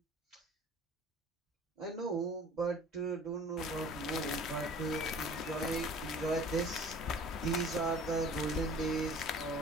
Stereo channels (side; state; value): both; normal; correlation 0.47